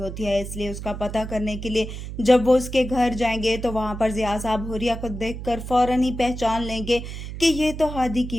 है, इसलिए उसका पता करने के लिए जब वो उसके घर जाएंगे तो वहां पर जिया साहब हुरिया को देखकर फौरन ही पहचान लेंगे कि ये तो हादी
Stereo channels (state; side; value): noise; right; hum, 8 dB below the sound